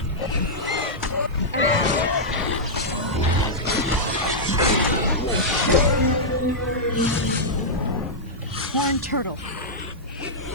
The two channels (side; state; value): both; normal; correlation -0.09